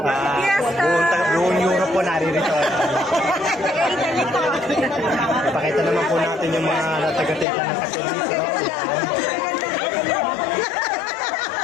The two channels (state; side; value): drops out; right; at 7.5 s